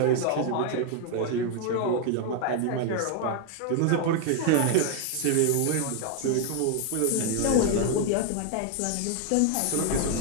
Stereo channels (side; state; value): both; different; correlation 0.01